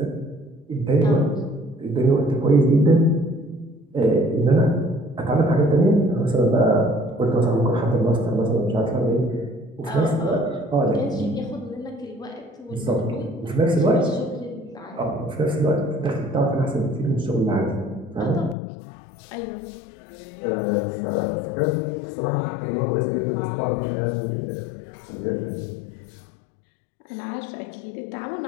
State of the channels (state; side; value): drops out; right; at 18.6 s